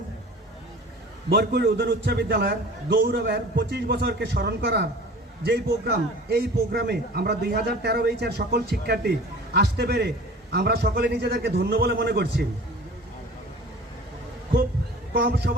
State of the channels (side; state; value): both; normal; correlation 0.43